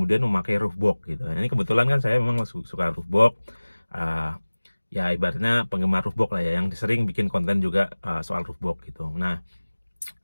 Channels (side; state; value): both; inverted; correlation -1.00